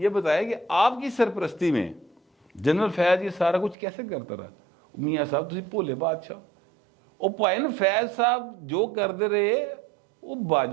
बताएं कि आपकी सरपरस्ती में जनरल फैज़ ये सारा कुछ कैसे करता रहा? मियाँ साहब तुम भोले बादशाह, वो भाई न फैज़ साहब जो करते रहे वो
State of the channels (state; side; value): drops out; left; at 3.8 s